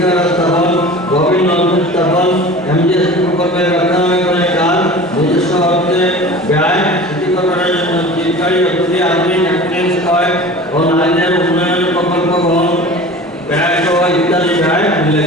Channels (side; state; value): both; normal; correlation 0.38